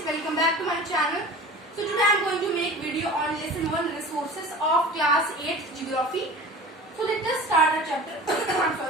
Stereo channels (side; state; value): both; normal; correlation 0.38